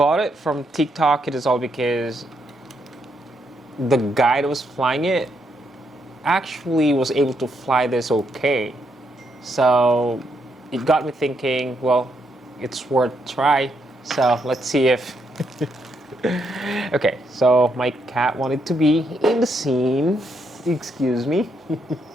it from TikTok. It is all because the guy that was flying it actually was able to fly this okay. So it got me thinking, well, it's worth a try. So let's see if... Okay, so my cat wanted to be in the scene. Excuse me.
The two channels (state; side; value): normal; both; correlation 0.77